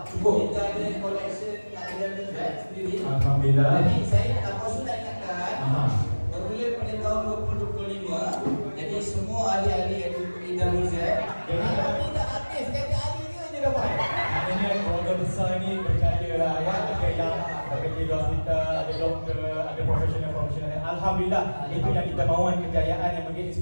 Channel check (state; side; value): inverted; both; correlation -1.00